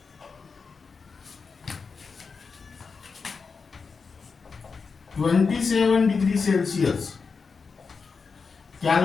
27 degrees Celsius.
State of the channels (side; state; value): right; quieter; 5.0 dB